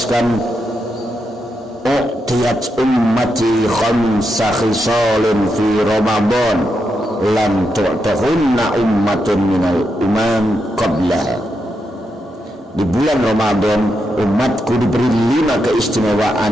u'tiyat ummati khamsa khisalin fi Ramadan lam tu'tahunna ummatun minal umam qablaha. Di bulan Ramadan umatku diberi 5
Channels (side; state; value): both; normal; correlation 0.84